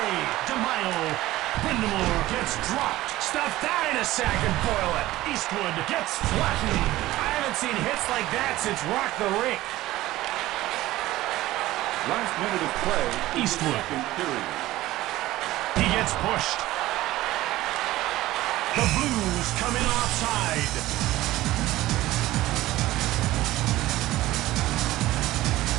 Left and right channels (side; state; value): left; quieter; 16.5 dB